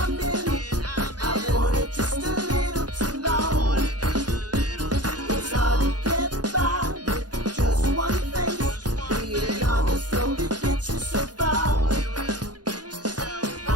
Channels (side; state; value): left; late; 0.69 ms